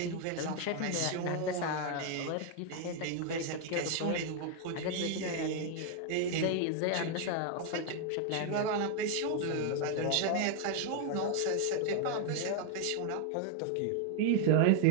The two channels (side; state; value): both; different; correlation 0.01